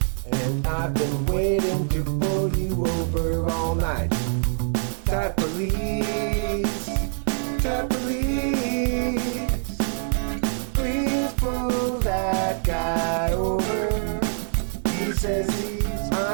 And I've been waiting to pull you over all night. Type police, type police, please pull that guy over. He says he's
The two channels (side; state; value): left; silent; digital silence